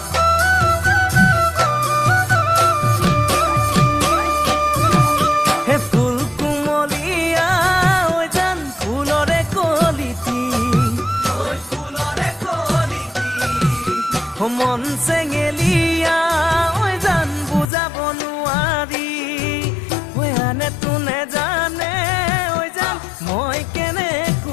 মন চেঙেলিয়া জান বুজাব নোৱাৰি আনে তোনে জানে জান মই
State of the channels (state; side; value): drops out; right; at 17.7 s